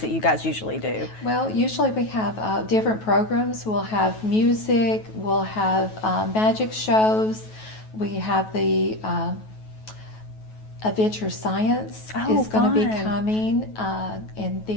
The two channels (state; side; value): late; right; 9.3 ms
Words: you guys usually do? Well, usually we have different programs. We'll have music, we'll have magic shows, we have the Adventure Science is going to be coming, and